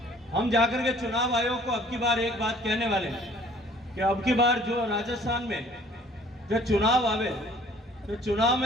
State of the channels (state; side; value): normal; both; correlation 0.55